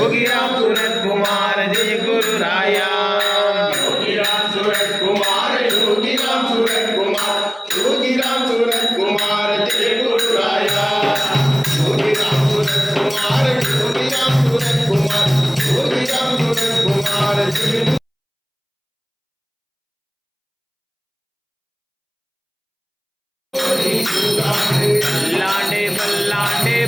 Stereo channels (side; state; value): both; identical; correlation 1.00